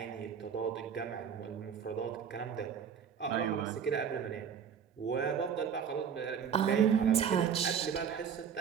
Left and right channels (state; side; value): quieter; left; 7.6 dB